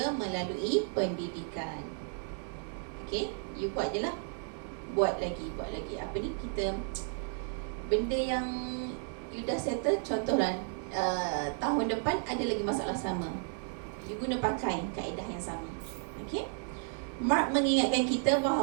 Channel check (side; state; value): left; silent; 55 dB below the other